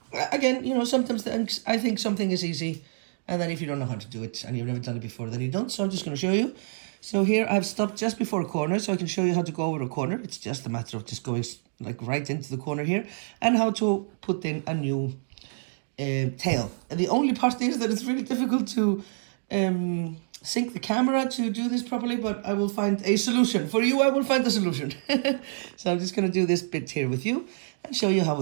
you know, sometimes I think something is easy, and then if you don't know how to do it and you've never done it before, then you don't. So I'm just going to show you. So here I've stopped just before a corner, so I can show you how to go over a corner. It's just a matter of just going like right into the corner here, and how to put in a new tail. And the only part is that it's really difficult to sync the camera to do this properly, but I will find a solution. For you, I will find a solution. So I'm just going to do this bit here with you and show you how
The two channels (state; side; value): silent; left; digital silence